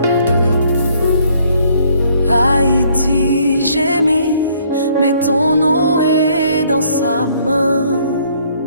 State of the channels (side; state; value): both; inverted; correlation -0.64